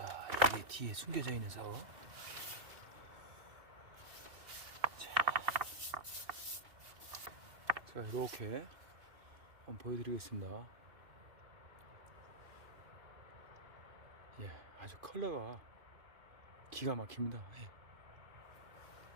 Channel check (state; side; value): late; left; 2.6 ms